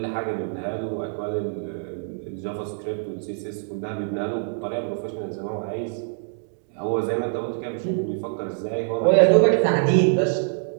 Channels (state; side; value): silent; left; digital silence